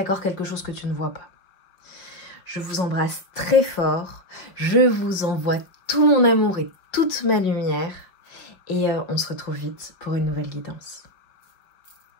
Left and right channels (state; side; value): late; right; 5.2 ms